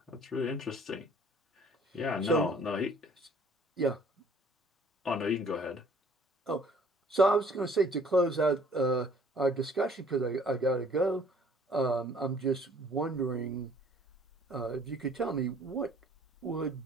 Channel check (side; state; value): both; normal; correlation 0.57